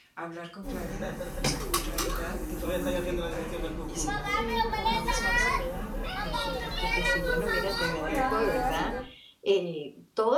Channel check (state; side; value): identical; both; correlation 1.00